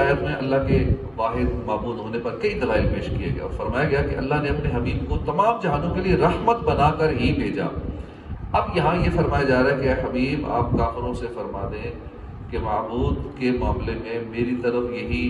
میں اللہ کے واحد معبود ہونے پر کئی دلائل پیش کیے گئے اور فرمایا گیا کہ اللہ نے اپنے حبیب کو تمام جہانوں کے لیے رحمت بنا کر ہی بھیجا۔ اب یہاں یہ فرمایا جا رہا ہے کہ اے حبیب آپ کافروں سے فرما دیں کہ معبود کے معاملے میں میری طرف یہی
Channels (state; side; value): identical; both; correlation 1.00